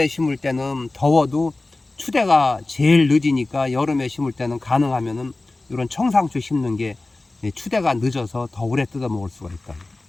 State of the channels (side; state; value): right; quieter; 3.1 dB